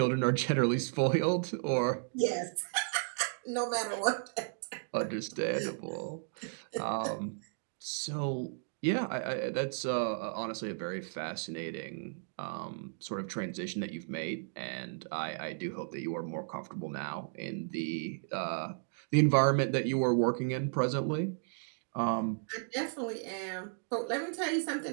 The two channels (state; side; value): silent; left; digital silence